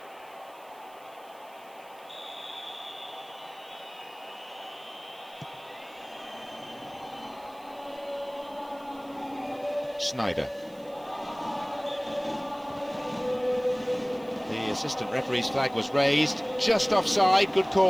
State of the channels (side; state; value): right; noise; hiss, 26 dB below the sound